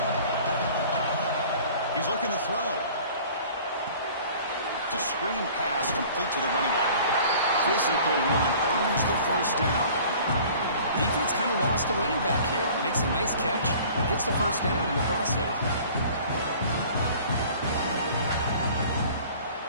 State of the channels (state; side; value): inverted; both; correlation -0.48